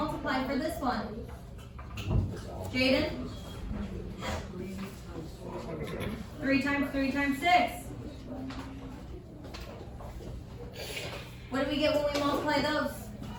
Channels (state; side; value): identical; both; correlation 1.00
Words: for this one? Jaden? 3 times 3 times 6. get when we multiply those?